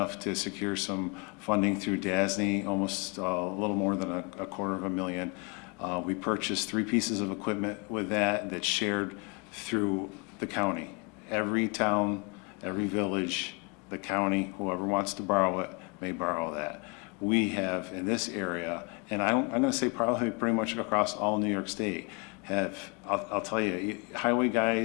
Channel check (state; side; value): quieter; right; 31.7 dB